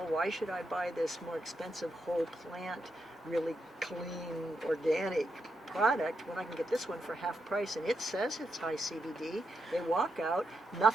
why should I buy this more expensive whole plant, really clean, organic product when I can get this one for half price? And it says it's high CBD. They walk out,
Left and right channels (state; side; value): normal; both; correlation 0.83